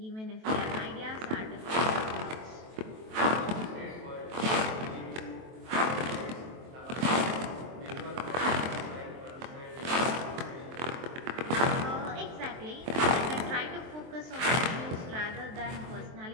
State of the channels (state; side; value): late; left; 23 ms